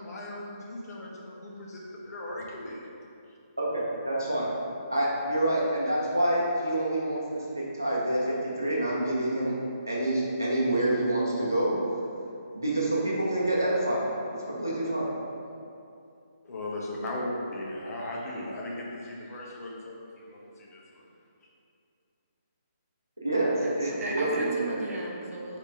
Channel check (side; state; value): both; inverted; correlation -0.76